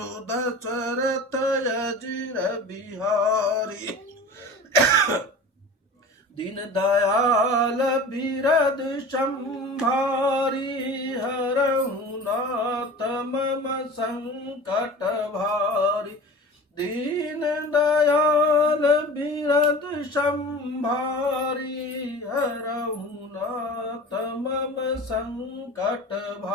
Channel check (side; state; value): both; normal; correlation 0.36